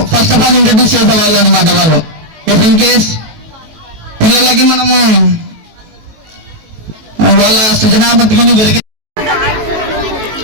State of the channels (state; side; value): late; left; 18 ms